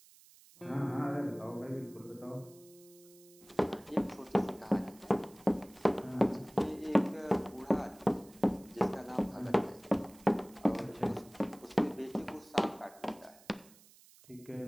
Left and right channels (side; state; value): right; noise; hiss, 24 dB below the sound